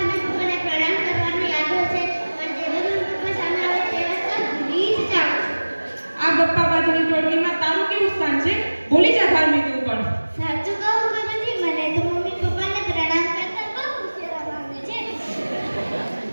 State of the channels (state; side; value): inverted; both; correlation -1.00